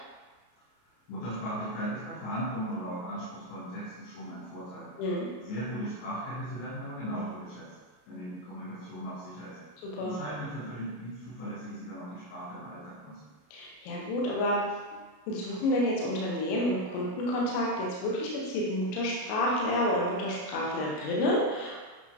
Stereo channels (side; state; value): right; late; 33 ms